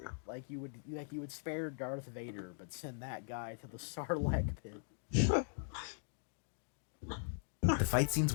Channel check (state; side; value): silent; right; digital silence